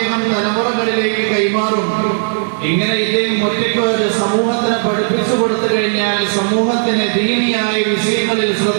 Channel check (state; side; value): silent; left; digital silence